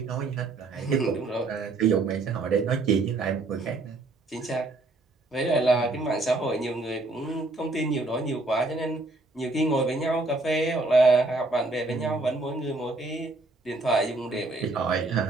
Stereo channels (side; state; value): left; quieter; 3.1 dB